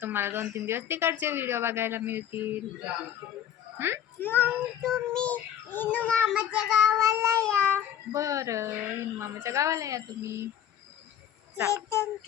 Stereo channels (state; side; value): quieter; right; 9.9 dB